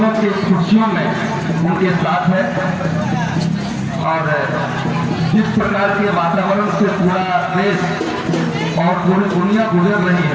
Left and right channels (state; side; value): identical; both; correlation 1.00